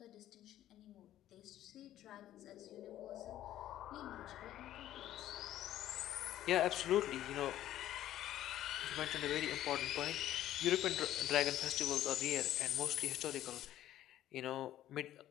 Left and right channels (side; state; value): right; quieter; 12.9 dB